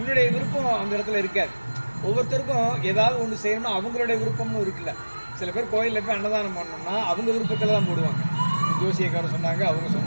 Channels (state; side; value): inverted; both; correlation -1.00